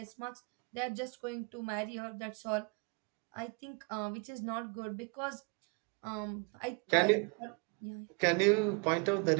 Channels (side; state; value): left; quieter; 33.9 dB